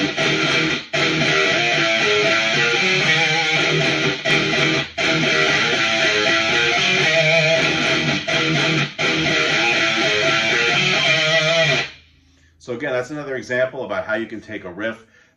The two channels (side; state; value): both; identical; correlation 1.00